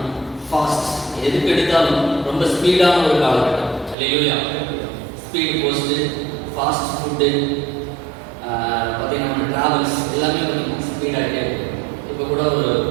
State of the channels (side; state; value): left; drops out; at 4.0 s